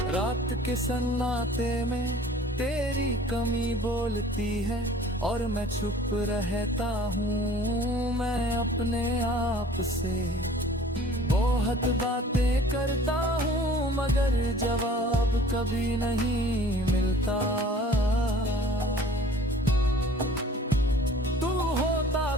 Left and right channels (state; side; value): normal; both; correlation 0.49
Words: रात के सन्नाटे में तेरी कमी बोलती है और मैं चुप रहता हूँ। मैं अपने आप से बहुत बातें करता हूँ, मगर जवाब कभी नहीं मिलता। तू होता